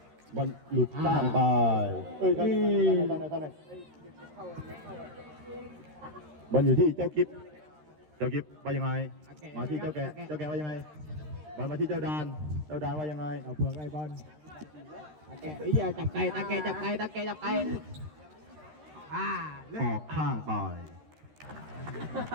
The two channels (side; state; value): left; late; 13 ms